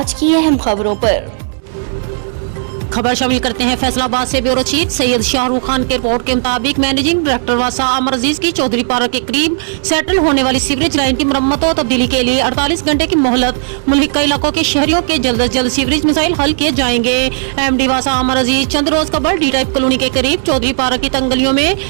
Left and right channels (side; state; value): left; silent; digital silence